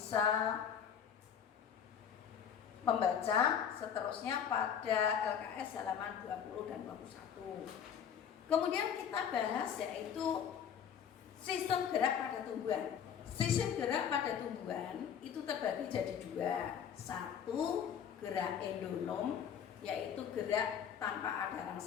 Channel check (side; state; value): right; quieter; 8.1 dB